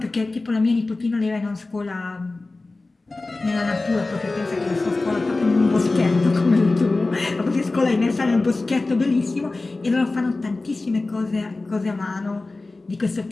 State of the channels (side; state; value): right; quieter; 3.3 dB